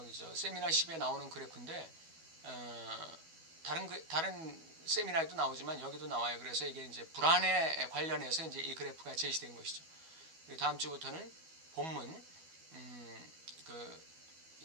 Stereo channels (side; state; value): left; late; 12 ms